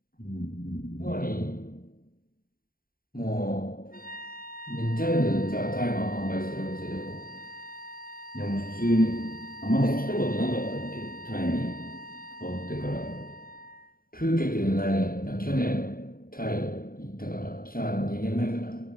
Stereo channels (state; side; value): late; right; 0.42 ms